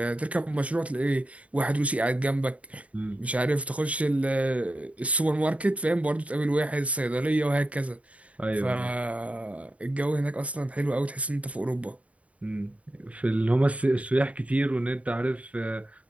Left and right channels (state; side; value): late; left; 0.066 ms